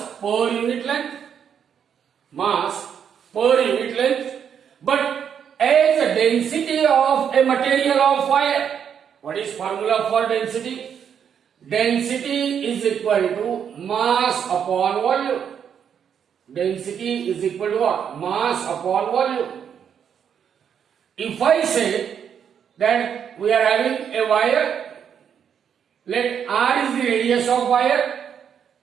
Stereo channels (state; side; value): quieter; left; 8.0 dB